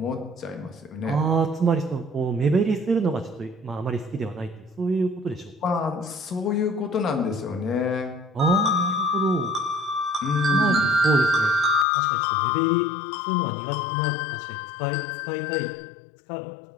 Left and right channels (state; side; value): drops out; right; at 11.9 s